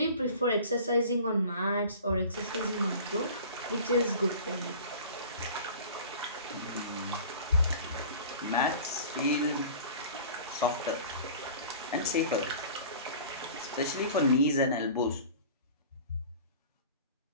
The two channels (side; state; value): both; inverted; correlation -0.42